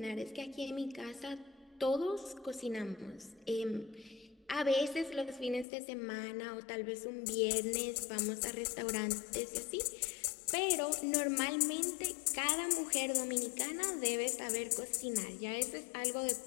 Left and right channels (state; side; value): drops out; right; at 5.7 s